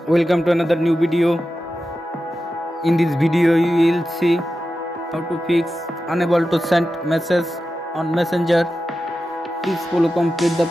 Welcome to another new video. In this video you will see how to fix unable to send message on messenger. Please follow complete the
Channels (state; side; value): normal; both; correlation 0.92